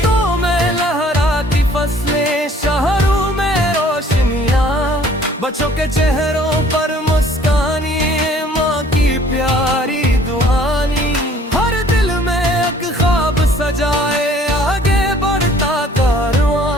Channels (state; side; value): normal; both; correlation 0.56